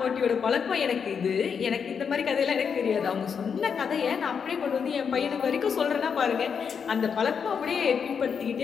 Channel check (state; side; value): quieter; right; 6.6 dB